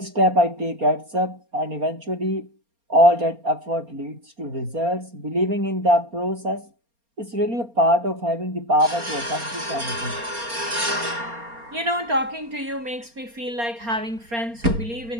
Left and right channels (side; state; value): left; late; 4.3 ms